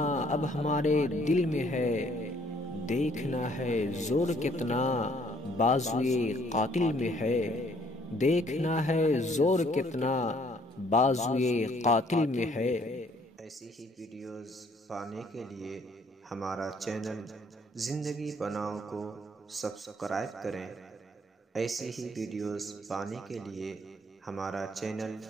اب ہمارے دل میں ہے، دیکھنا ہے زور کتنا بازوئے قاتل میں ہے، دیکھنا ہے زور کتنا بازوئے قاتل میں ہے۔ ایسی ہی ویڈیوز پانے کے لیے ہمارا چینل زندگی بناؤ کو سبسکرائب کریں، ایسی ہی ویڈیوز پانے کے لیے ہمارا چینل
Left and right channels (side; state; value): both; normal; correlation 0.63